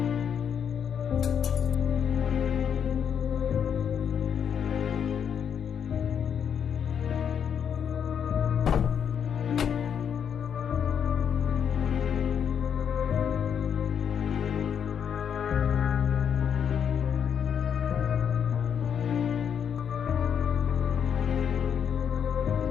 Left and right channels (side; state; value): right; quieter; 7.9 dB